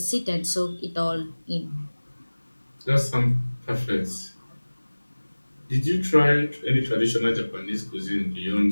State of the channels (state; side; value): inverted; both; correlation -1.00